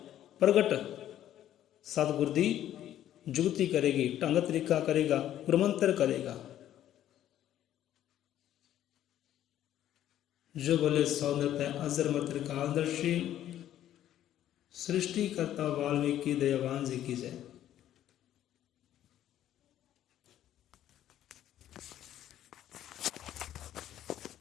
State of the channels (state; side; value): quieter; right; 11.9 dB